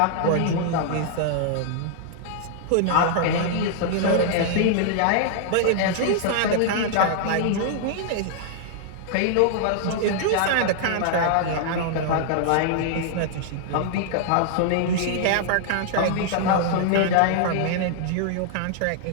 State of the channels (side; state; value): both; different; correlation -0.01